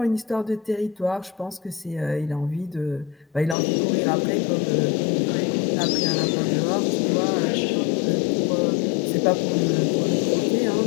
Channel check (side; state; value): right; drops out; at 3.6 s